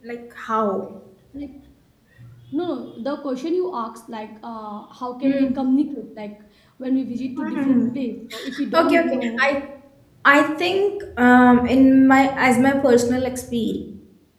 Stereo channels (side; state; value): both; identical; correlation 1.00